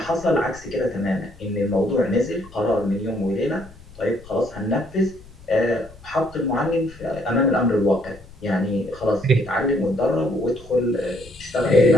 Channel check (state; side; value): noise; left; rumble, 21 dB below the sound